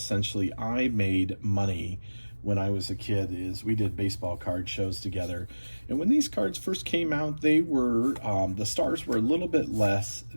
I made money when I was a kid. Is we did baseball card shows together. And when these cards first came out, they were, the stars were a little bit less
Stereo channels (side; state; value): both; inverted; correlation -1.00